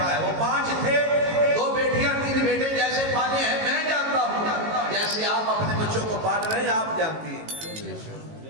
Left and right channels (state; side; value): late; left; 18 ms